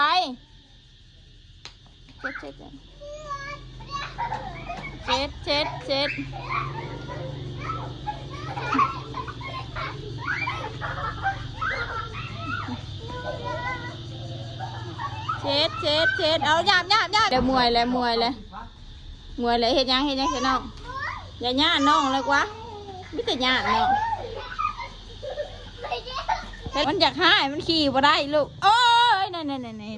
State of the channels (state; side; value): identical; both; correlation 1.00